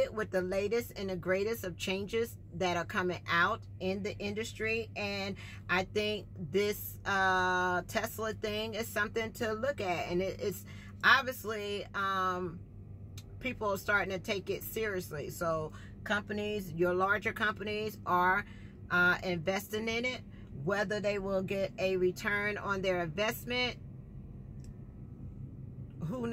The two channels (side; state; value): both; identical; correlation 1.00